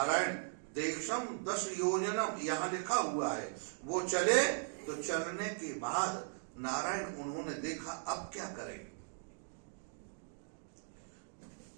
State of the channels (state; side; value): silent; left; digital silence